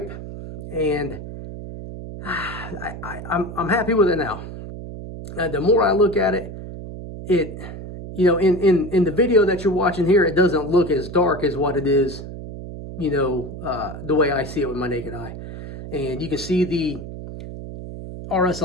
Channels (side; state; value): right; noise; hum, 10 dB below the sound